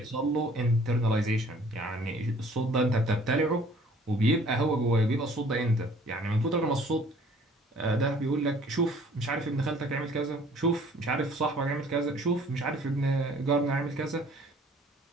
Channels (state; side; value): normal; both; correlation 0.55